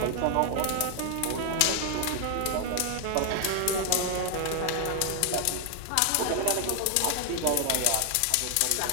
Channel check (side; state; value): both; different; correlation 0.00